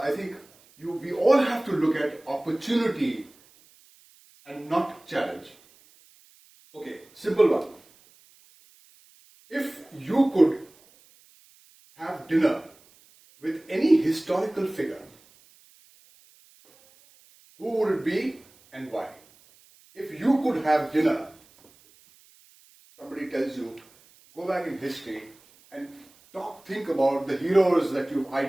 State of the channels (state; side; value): noise; right; hiss, 29 dB below the sound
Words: think we all have to look at opportunity and not challenge. Okay, simple one. If you could have dinner with any historical figure, who would it be and why? If you could have dinner, somebody tells you, go back in history and think about the heroes that you've